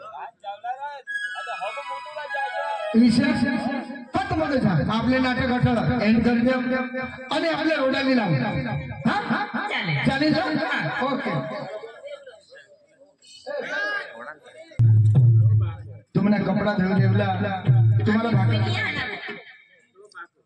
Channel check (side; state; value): both; identical; correlation 1.00